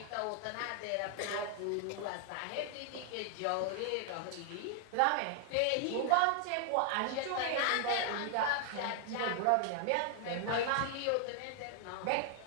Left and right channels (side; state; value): both; different; correlation 0.00